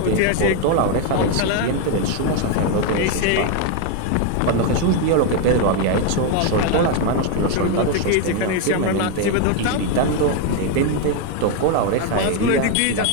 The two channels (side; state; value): both; different; correlation 0.01